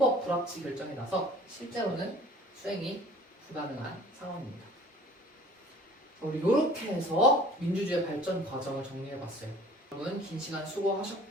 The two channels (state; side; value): normal; both; correlation 0.48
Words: 불합치 결정이 나서 실제로는 수행이 불가능한 상황입니다. 우리 이렇게 해서 민주주의 발전 과정을 정리해봤어요. 여러분 긴 시간